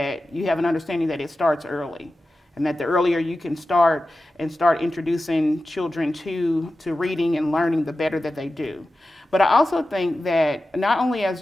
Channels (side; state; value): both; normal; correlation 0.94